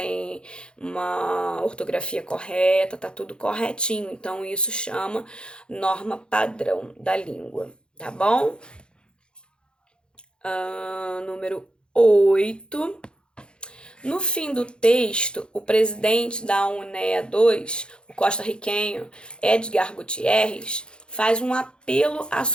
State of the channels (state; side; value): late; right; 0.051 ms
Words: uma ortografia correta, tá tudo corretinho. Então, isso chama norma padrão da língua, tá bom? Número 8. No fim do texto, o presidente da UNEA 2, o costarriquenho Edgar Gutierrez, faz um apelo à